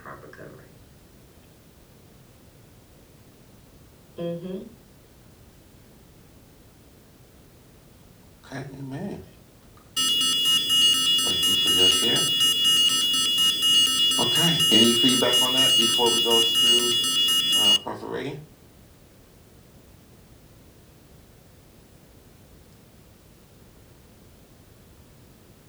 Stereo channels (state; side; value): identical; both; correlation 1.00